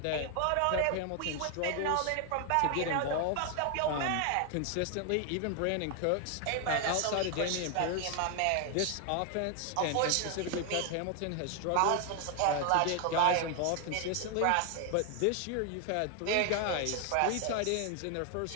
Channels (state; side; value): different; both; correlation 0.01